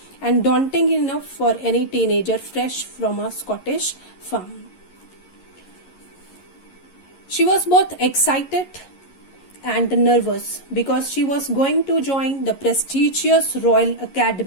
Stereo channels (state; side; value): late; right; 11 ms